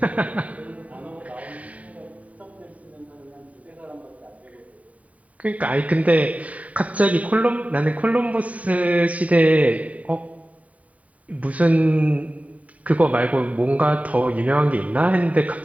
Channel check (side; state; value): left; late; 0.069 ms